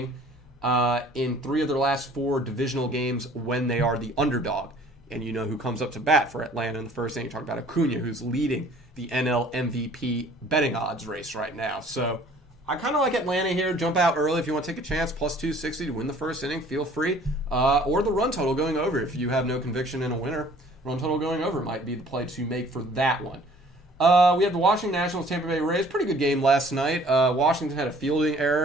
in 3 of their last 4 divisional games when they are the underdog. And you know who comes up to bat for Atlanta in the first inning. You talk about Acuna, who's leading the NL MVP betting odds race right now. So I kind of like Atlanta here. Jump out early if you want to take a chance. Plus 260 to win the first inning. Feel free. Or the run total going over if you have no conviction in a winner. Run total going over might be the play to make for that one. We have the Washington Nationals, Tampa Bay Rays. Pretty good game last night. Washington had a fielding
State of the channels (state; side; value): normal; both; correlation 0.53